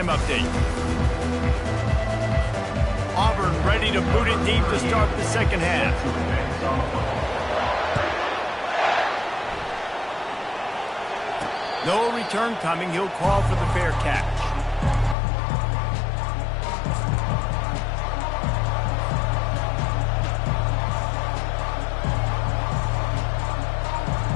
update. Auburn ready to boot it deep to start the second half. No return coming. He'll call for the fair catch.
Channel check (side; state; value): right; drops out; at 15.2 s